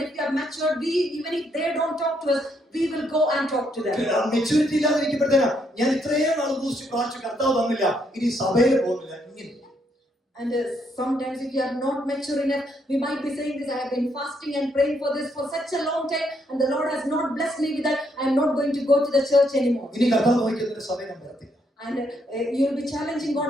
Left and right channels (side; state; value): both; normal; correlation 0.74